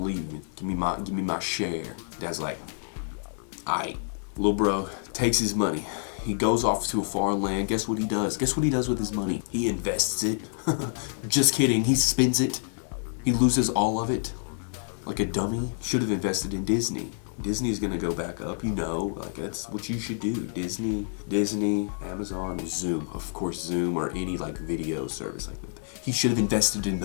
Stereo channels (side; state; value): right; silent; digital silence